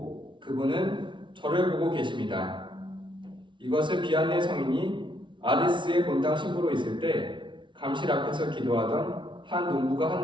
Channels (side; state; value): left; late; 0.24 ms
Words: 그분은 저를 보고 계십니다. 이것을 비안네 성인이 아리스의 본당 신부로 있을 때 감실 앞에서 기도하던 한 농부가